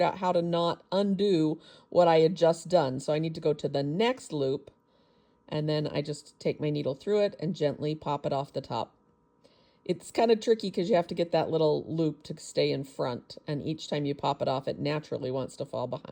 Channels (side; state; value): both; identical; correlation 1.00